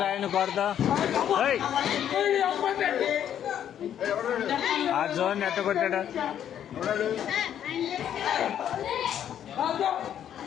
కొడతా ఆ జోన్ ఎట్ట కొట్టాడా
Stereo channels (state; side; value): quieter; right; 9.9 dB